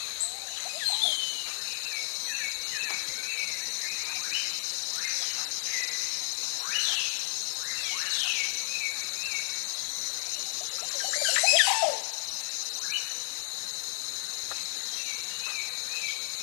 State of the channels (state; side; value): silent; right; digital silence